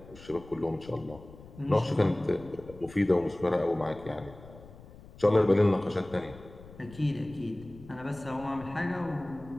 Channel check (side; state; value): left; noise; rumble, 19 dB below the sound